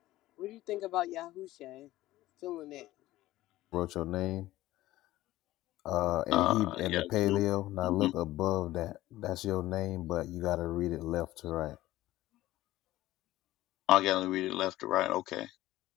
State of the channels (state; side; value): quieter; right; 16.1 dB